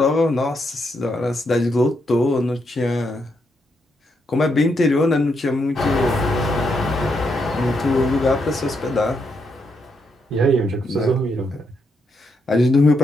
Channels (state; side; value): normal; both; correlation 0.79